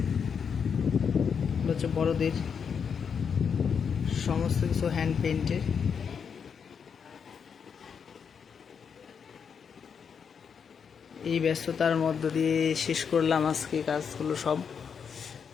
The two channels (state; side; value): quieter; right; 6.7 dB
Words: হচ্ছে বড়দের, সমস্ত কিছু হ্যান্ড পেইন্টের। এই ব্যস্ততার মধ্য দিয়ে শেষ করলাম আজকে কাজগুলো।